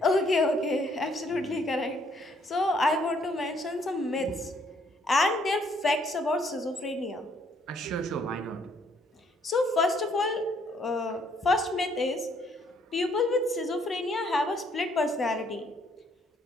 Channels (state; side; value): normal; both; correlation 0.67